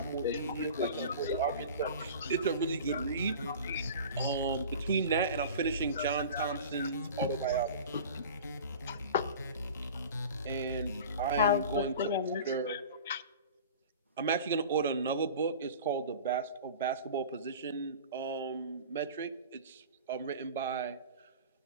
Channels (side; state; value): both; inverted; correlation -0.38